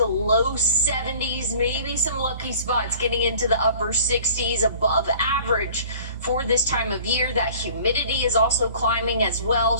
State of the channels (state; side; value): inverted; both; correlation -0.48